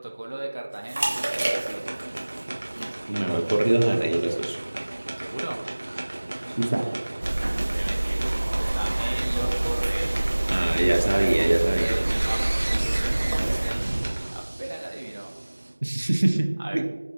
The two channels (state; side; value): inverted; both; correlation -1.00